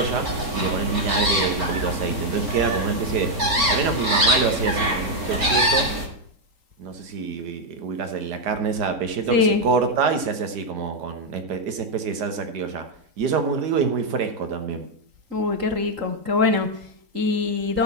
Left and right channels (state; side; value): late; left; 4.4 ms